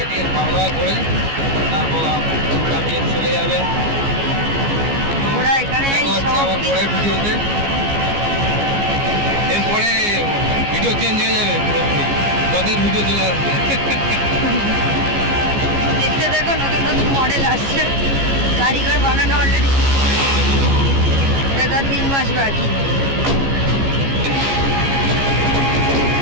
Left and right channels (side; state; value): left; late; 15 ms